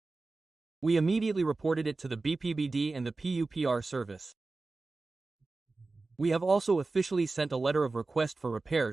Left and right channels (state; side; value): quieter; left; 3.5 dB